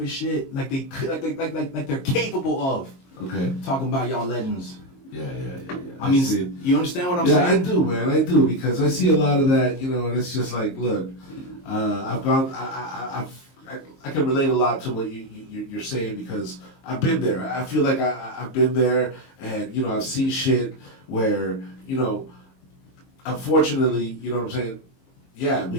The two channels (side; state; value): right; late; 22 ms